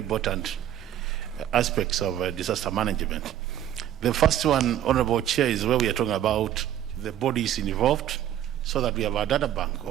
aspects of disaster management. The first one, Honorable Chair, is where we are talking about the bodies involved, so that we have a data bank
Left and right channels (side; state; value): left; quieter; 11.2 dB